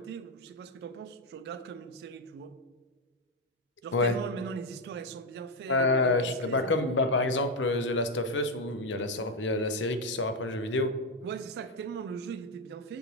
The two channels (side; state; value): both; normal; correlation 0.05